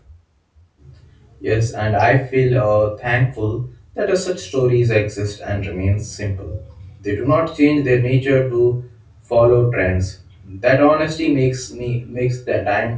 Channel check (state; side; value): identical; both; correlation 1.00